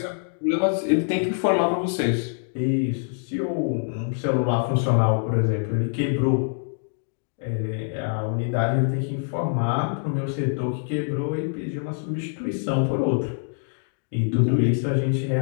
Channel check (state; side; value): silent; right; digital silence